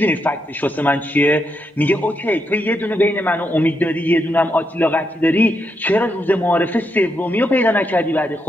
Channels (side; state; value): both; normal; correlation 0.81